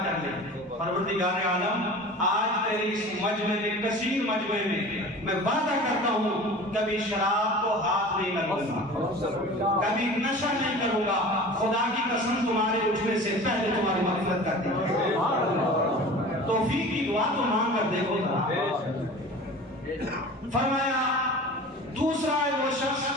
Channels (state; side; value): normal; both; correlation 0.39